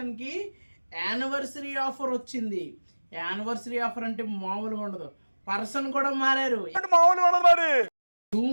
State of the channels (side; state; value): both; inverted; correlation -1.00